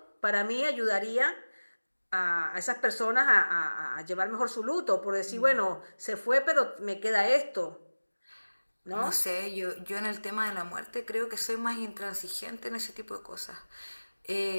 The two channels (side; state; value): both; inverted; correlation -1.00